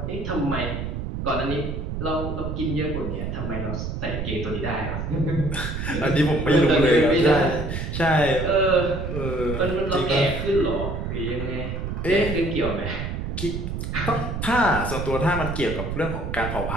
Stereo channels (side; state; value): right; noise; rumble, 4 dB below the sound